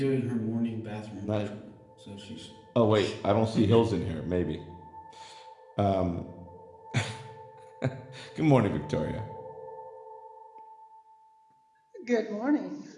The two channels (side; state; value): both; identical; correlation 1.00